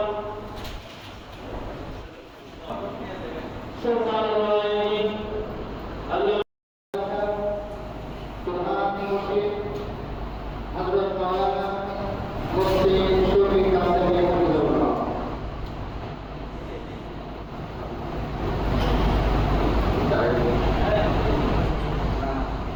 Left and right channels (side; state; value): both; identical; correlation 1.00